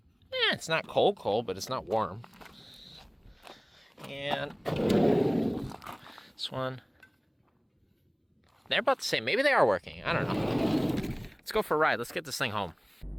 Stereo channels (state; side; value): identical; both; correlation 1.00